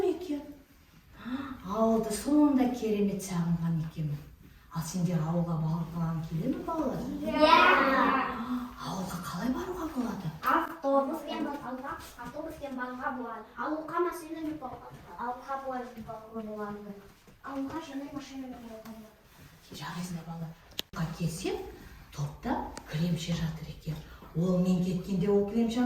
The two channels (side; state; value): both; identical; correlation 1.00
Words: екен. Ауылды сонда керемет сағынған екенмін. Ал сендер ауылға барған келе ме балалар? Ауылға қалай баруға болады? Автобуспен баруға болады. Ауылға машинамен баруға болады. Ауылға жаңа машинамен баруға болады. Жарайсыңдар балалар. Ауылға келсем, топта кілемше жатыр екен. Ол мен кеткенде ол